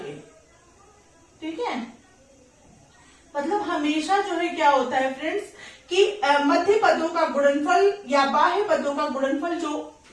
ठीक है। मतलब हमेशा जो है क्या होता है फ्रेंड्स कि मध्य पदों का गुणनफल या बाह्य पदों का गुणनफल, जो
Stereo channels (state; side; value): identical; both; correlation 1.00